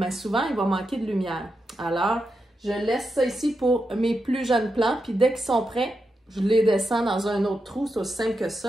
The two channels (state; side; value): normal; both; correlation 0.87